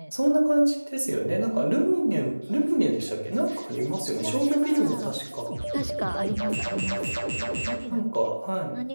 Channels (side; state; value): both; inverted; correlation -1.00